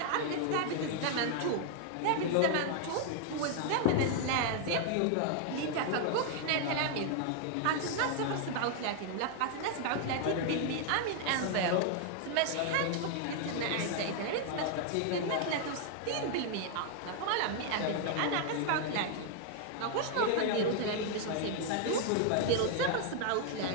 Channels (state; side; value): different; both; correlation 0.00